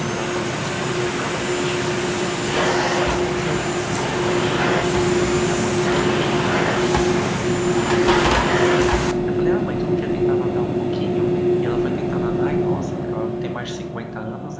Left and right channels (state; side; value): identical; both; correlation 1.00